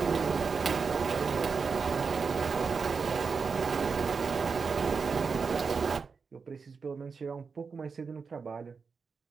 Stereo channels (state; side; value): quieter; left; 5.2 dB